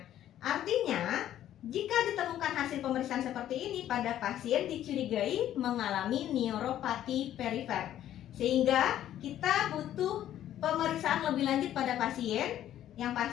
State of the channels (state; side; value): quieter; right; 11.8 dB